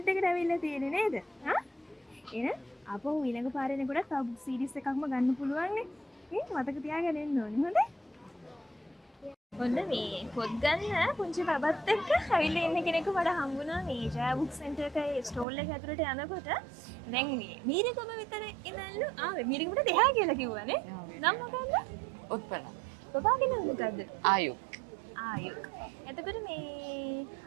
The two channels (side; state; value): left; drops out; at 15.5 s